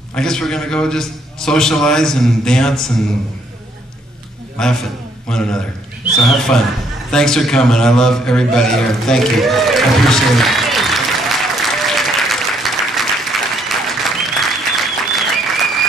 guess we're going to go just socialize and dance and laugh at one another. So have fun. Thanks for coming. I love everybody here. Thank you. I appreciate it.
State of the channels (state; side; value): normal; both; correlation 0.68